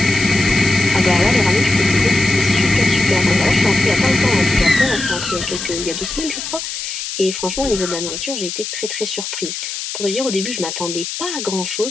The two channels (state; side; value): noise; left; hiss, 6 dB below the sound